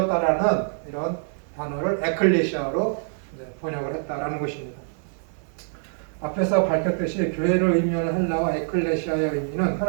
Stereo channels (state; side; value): silent; left; digital silence